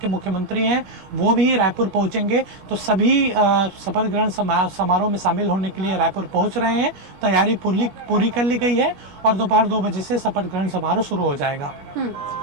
मुख्यमंत्री हैं, वो भी रायपुर पहुंचेंगे। तो सभी शपथ ग्रहण समारोह में शामिल होने के लिए रायपुर पहुंच रहे हैं। तैयारी पूरी कर ली गई है और दोपहर 2 बजे से शपथ ग्रहण समारोह शुरू हो जाएगा।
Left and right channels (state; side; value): late; left; 21 ms